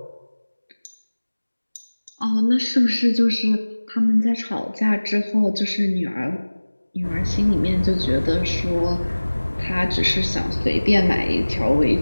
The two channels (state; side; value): inverted; both; correlation -1.00